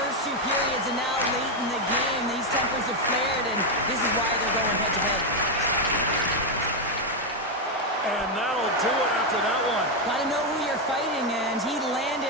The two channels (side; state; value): both; normal; correlation 0.04